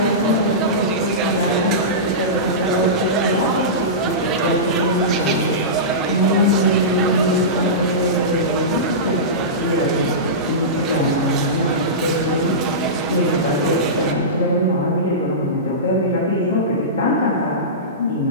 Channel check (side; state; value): both; normal; correlation -0.19